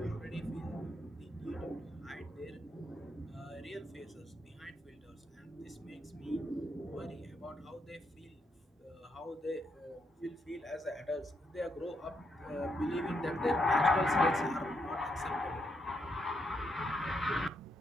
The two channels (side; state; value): both; normal; correlation 0.79